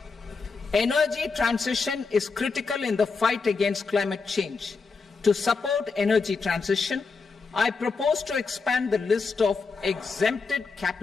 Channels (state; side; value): quieter; right; 4.6 dB